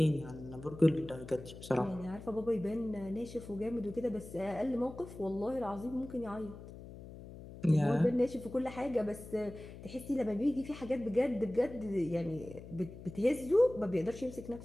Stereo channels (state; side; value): noise; left; hum, 14 dB below the sound